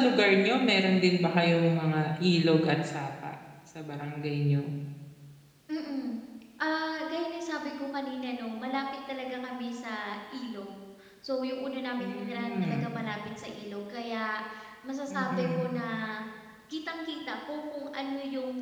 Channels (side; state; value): both; identical; correlation 1.00